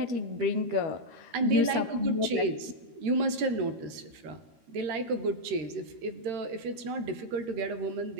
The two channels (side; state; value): left; late; 13 ms